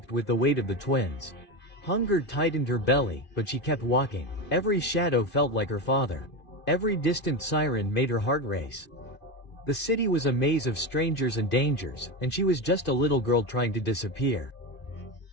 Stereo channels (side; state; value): right; late; 2.5 ms